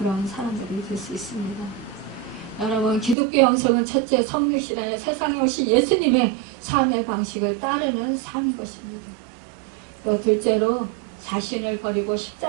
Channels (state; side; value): drops out; left; at 3.2 s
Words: 사람들이 될 수 있습니다. 여러분, 기독교 영성은 첫째 성육신하여 세상에 오신 예수님의 삶의 방식을 따르는 삶인 것입니다. 또 둘째로 자신을 버리고